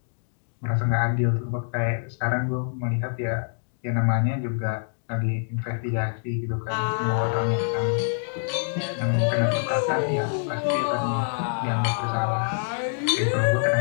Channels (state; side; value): silent; right; digital silence